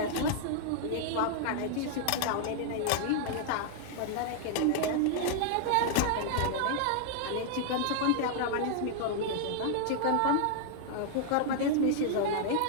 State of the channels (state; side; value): different; both; correlation -0.01